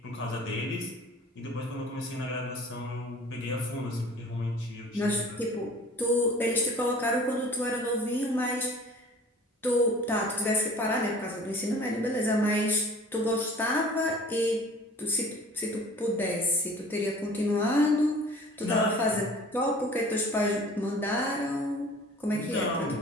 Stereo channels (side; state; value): both; normal; correlation 0.46